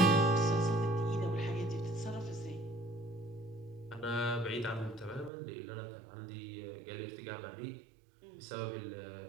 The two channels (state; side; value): drops out; left; at 5.3 s